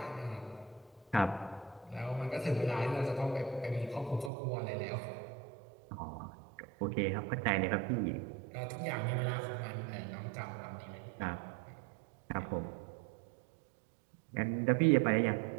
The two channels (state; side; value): drops out; left; at 4.3 s